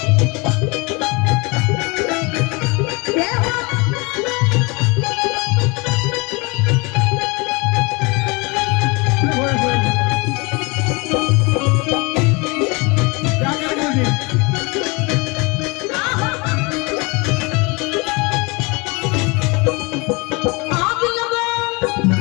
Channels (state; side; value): quieter; right; 27.8 dB